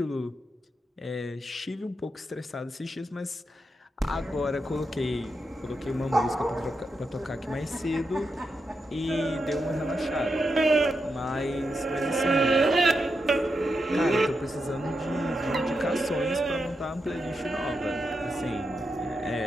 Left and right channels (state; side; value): normal; both; correlation 0.86